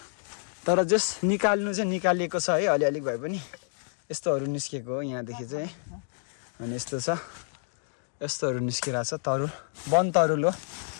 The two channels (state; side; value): silent; right; digital silence